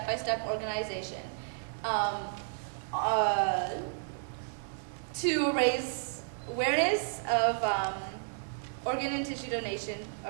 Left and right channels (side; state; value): left; silent; 56 dB below the other